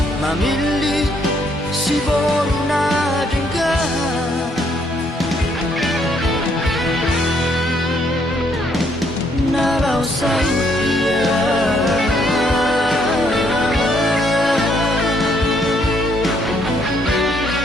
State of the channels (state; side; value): normal; both; correlation 0.70